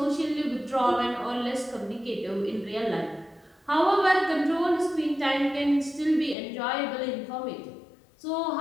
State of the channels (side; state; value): right; drops out; at 6.4 s